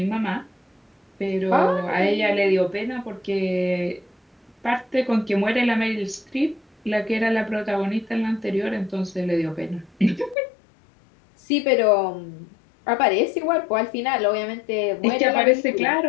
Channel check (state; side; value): drops out; right; at 10.4 s